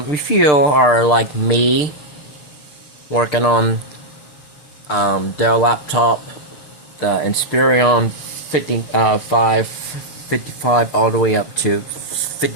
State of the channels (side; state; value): right; late; 6.6 ms